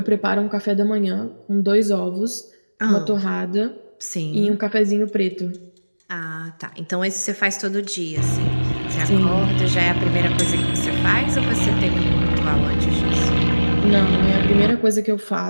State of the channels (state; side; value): inverted; both; correlation -1.00